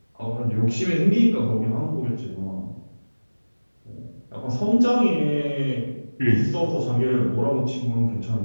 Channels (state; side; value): inverted; both; correlation -1.00